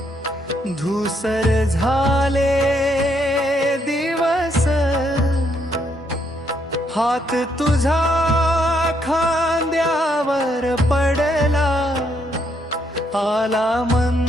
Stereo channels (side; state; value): both; normal; correlation 0.73